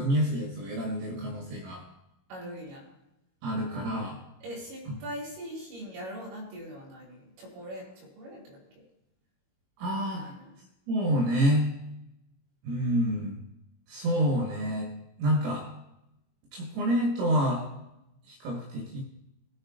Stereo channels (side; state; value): left; late; 22 ms